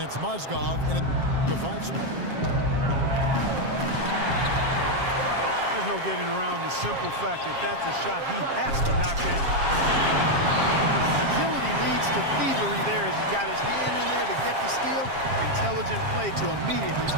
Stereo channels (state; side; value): late; left; 7.4 ms